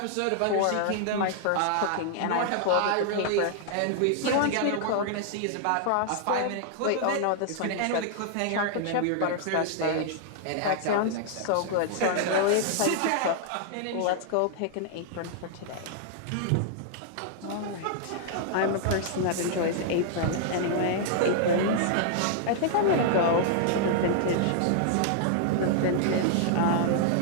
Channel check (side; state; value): both; different; correlation -0.01